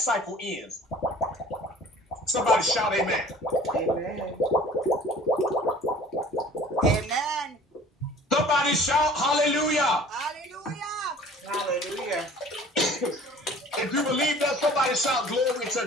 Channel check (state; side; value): normal; both; correlation 0.48